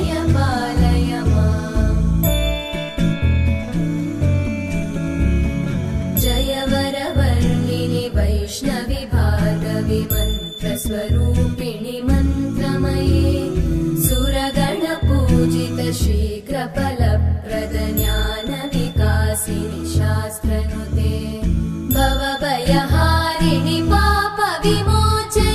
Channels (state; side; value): identical; both; correlation 1.00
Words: पालय माम् जय वरवर्णिनि वैष्णवि भार्गवि मन्त्रस्वरूपिणि मन्त्रमये सुरगणपूजित शीघ्रफलप्रद ज्ञानविकासिनि शास्त्रनुते भवभयहारिणि